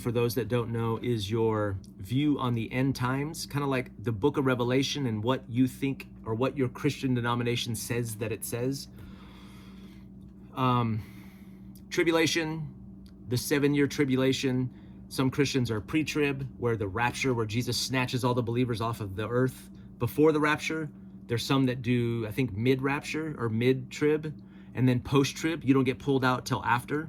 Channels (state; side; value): identical; both; correlation 1.00